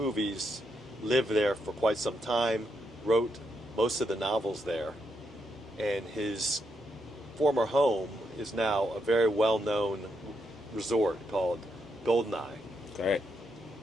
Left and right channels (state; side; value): normal; both; correlation 0.80